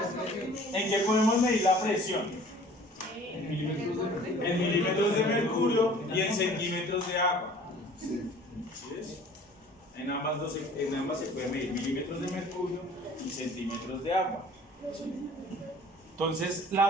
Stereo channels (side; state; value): both; normal; correlation 0.49